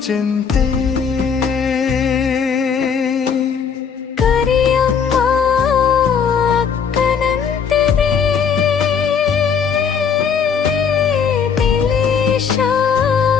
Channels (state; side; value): quieter; right; 6.7 dB